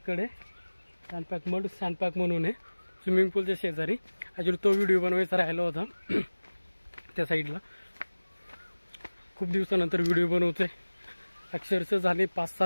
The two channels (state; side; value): inverted; both; correlation -1.00